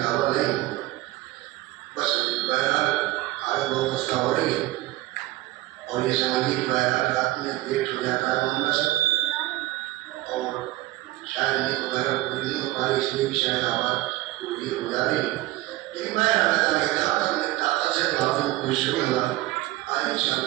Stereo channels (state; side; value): quieter; left; 17.6 dB